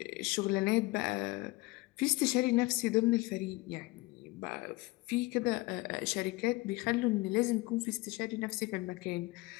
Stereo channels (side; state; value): right; quieter; 22.2 dB